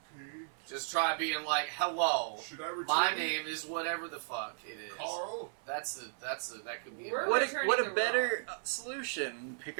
Okay. Just try being like, hello. Should I return My it? name is whatever the fuck it is. Carl. That could be We're a What, better. returning what the a better solution! Pick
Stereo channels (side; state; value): left; silent; 54 dB below the other